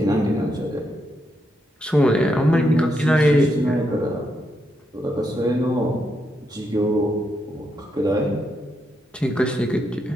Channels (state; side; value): normal; both; correlation 0.81